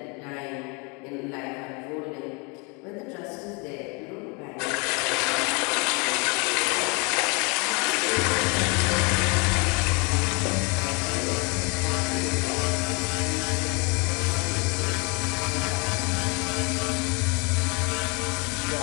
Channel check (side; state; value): right; quieter; 31.1 dB